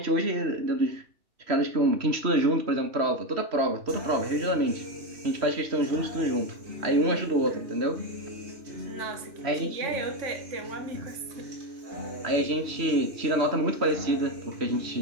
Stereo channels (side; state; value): left; late; 3.1 ms